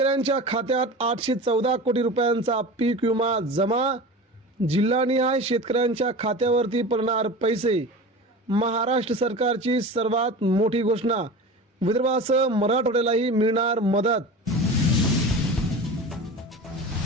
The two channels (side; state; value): both; normal; correlation 0.32